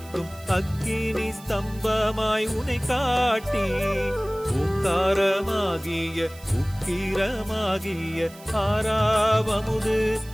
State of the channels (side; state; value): right; noise; hiss, 21 dB below the sound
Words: அக்கினி ஸ்தம்பமாய் உனை காட்டி ஓங்காரமாகிய உக்கிரமாகிய ஆறாவமுது